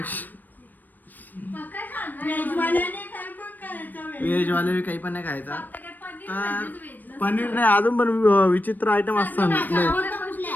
व्हेजवाले काही पण नाही खायचा. तर पनीर नाही अजून पण विचित्र आयटम असतात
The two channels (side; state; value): right; late; 0.089 ms